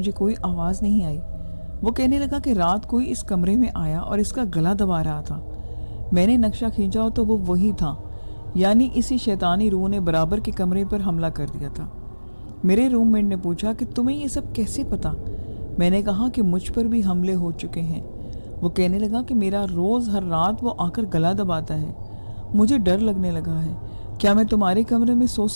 کوئی آواز نہیں آئی۔ وہ کہنے لگا کہ رات کوئی اس کمرے میں آیا اور اس کا گلا دبا رہا تھا۔ میں نے نقشہ کھینچا تو وہ وہی تھا، یعنی اسی شیطانی روح نے برابر کے کمرے پر حملہ کر دیا تھا۔ میرے روم میٹ نے پوچھا کہ تمہیں یہ سب کیسے پتا؟ میں نے کہا کہ مجھ پر بھی حملے ہو چکے ہیں۔ وہ کہنے لگا کہ میرا روز ہر رات وہ آ کر گلا دباتا ہے، مجھے ڈر لگنے لگا ہے، کیا میں تمہارے کمرے میں سو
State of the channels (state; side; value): inverted; both; correlation -1.00